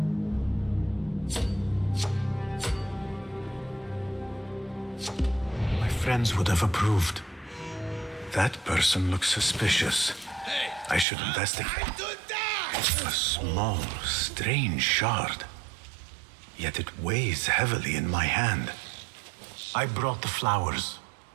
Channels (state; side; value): drops out; left; at 11.1 s